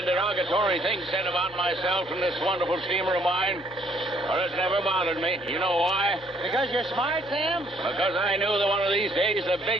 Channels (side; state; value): both; normal; correlation 0.65